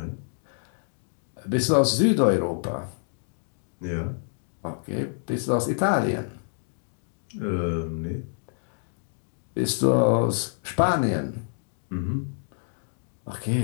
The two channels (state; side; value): silent; right; digital silence